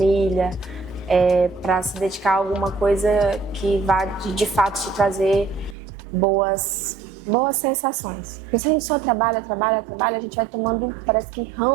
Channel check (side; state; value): left; drops out; at 5.8 s